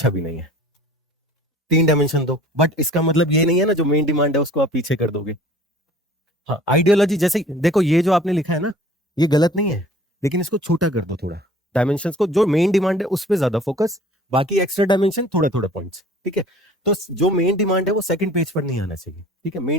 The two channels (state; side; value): normal; both; correlation 0.48